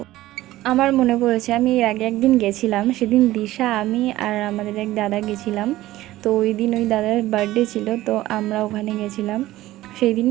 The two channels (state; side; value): quieter; left; 16.1 dB